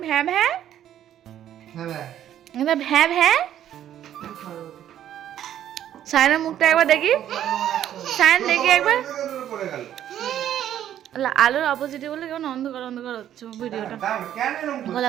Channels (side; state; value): left; quieter; 11.0 dB